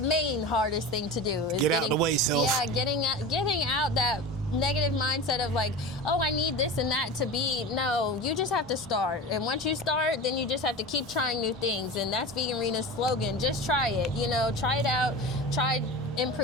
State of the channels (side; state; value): both; normal; correlation 0.30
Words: main hardest thing to do. Is Get out the way, self. Yeah, getting out that negative mindset of like, oh, I need this and that to be. No, you just have to start. And once you start, then you just have to keep trying new things. And that's VeganRena's slogan. Just try it. You know, try it out. Try